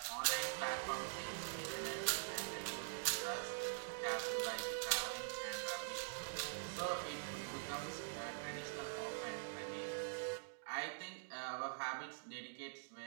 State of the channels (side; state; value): left; silent; digital silence